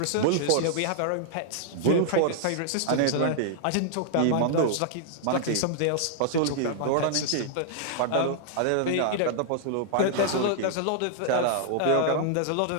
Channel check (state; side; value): different; both; correlation -0.01